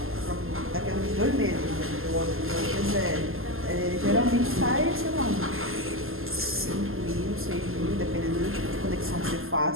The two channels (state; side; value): late; left; 0.61 ms